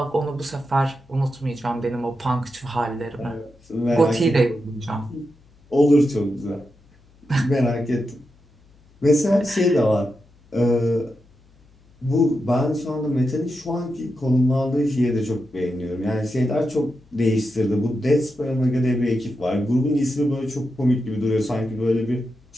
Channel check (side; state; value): left; noise; hum, 29 dB below the sound